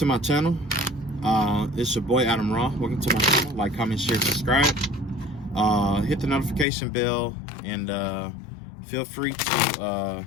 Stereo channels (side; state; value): right; drops out; at 6.7 s